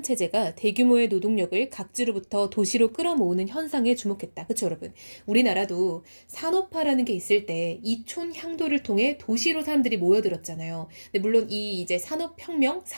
대규모의 노동력을 각지로부터 도시로 끌어모으는 현상에 주목했다. 그쵸, 여러분? 우리나라도 산업화라는 게 있을 때 이촌 향도를 통해 도시로 사람들이 모여들었잖아요. 근데 물론 이 이제 산업혁명,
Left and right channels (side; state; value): both; inverted; correlation -1.00